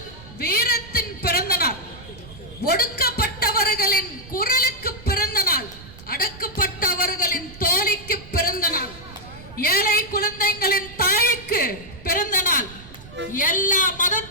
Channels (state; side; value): noise; right; rumble, 18 dB below the sound